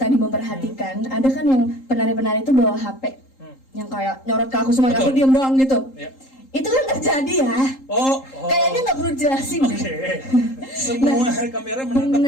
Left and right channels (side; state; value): right; late; 3.8 ms